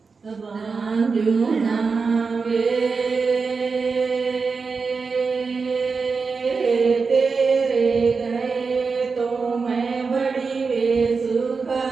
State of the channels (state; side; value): quieter; left; 4.8 dB